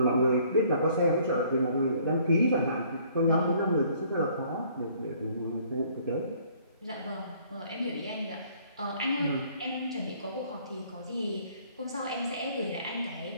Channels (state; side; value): inverted; both; correlation -0.60